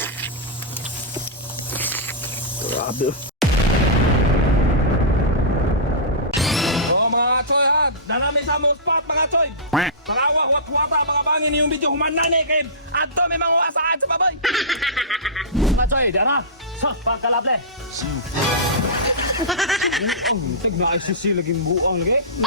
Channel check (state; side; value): normal; both; correlation -0.18